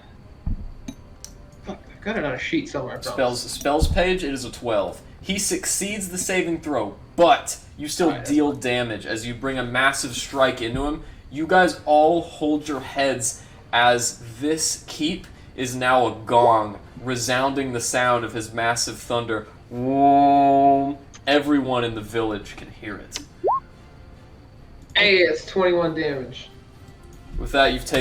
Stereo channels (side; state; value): both; identical; correlation 1.00